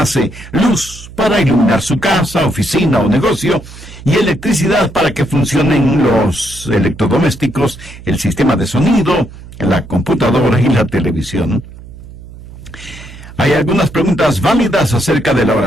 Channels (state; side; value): noise; right; hum, 17 dB below the sound